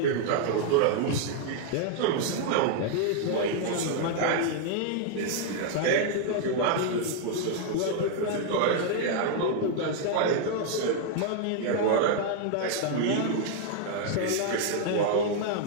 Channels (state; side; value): different; both; correlation 0.00